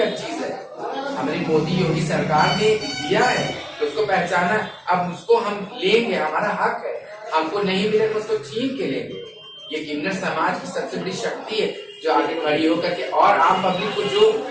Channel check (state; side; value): identical; both; correlation 1.00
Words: चीज है, हमारी मोदी योगी सरकार ने दिया है, तो उसको पहचाना, अब उसको हम लेंगे, हमारा हक है, हमको नहीं मिले तो उसको छीन के लेंगे। ये किन्नर समाज की सबसे बड़ी शक्ति है जो आगे खड़ी होकर के, और आम पब्लिक को जो